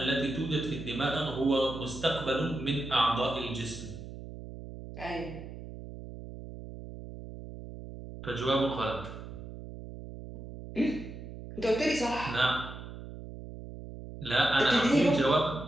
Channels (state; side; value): noise; right; hum, 12 dB below the sound